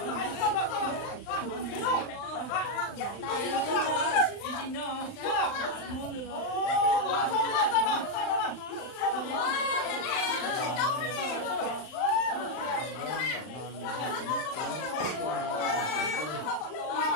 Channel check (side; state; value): right; late; 39 ms